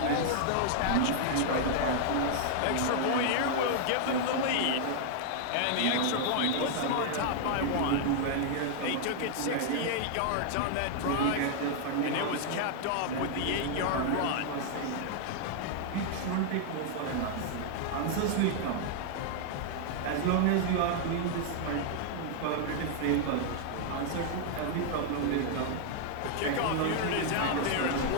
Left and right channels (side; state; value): both; different; correlation -0.01